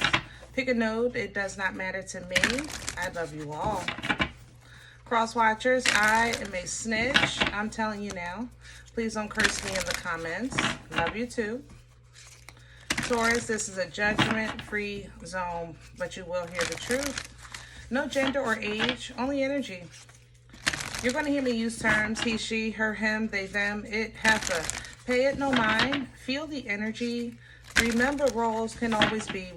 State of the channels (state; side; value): identical; both; correlation 1.00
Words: Pick a node. It does not matter to me. I love you all. Cross watchers, I am a snitch. I'm telling you now. Please don't curse me in the comments. Love you too. Taurus, this is a judgment-free zone, but you will hear the truth. No gender or age, only energy. You're going to hear me use terms he, she, her, him, they, them, it, heifer. Pay it no mind. Feel the energy. Remember, roles can always be